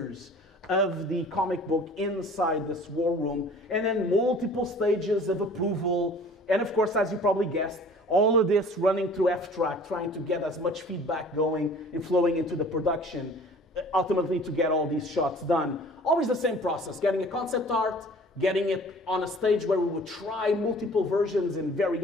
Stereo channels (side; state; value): both; normal; correlation 0.48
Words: of the comic book inside this war room, and then multiple stages of approval, and of course, as you probably guessed, all of this running through FTrack, trying to get as much feedback going and flowing into the production, ultimately to get all these shots done. Always the same process, getting a concept art, getting it on a stage where we would try multiple versions and